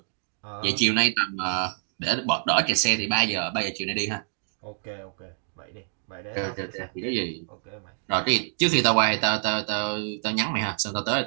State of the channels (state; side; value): silent; left; digital silence